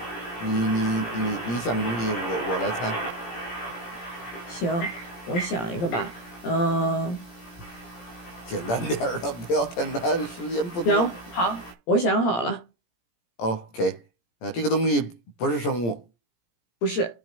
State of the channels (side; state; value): right; late; 17 ms